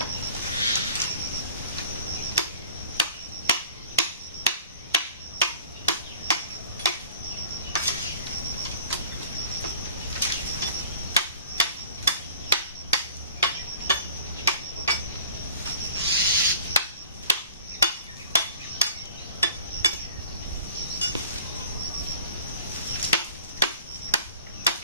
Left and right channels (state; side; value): inverted; both; correlation -0.46